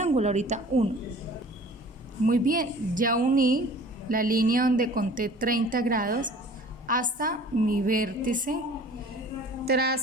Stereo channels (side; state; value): both; normal; correlation 0.47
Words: ahorita 1. Muy bien, ya uní la línea donde conté 30 grados hasta mi vértice,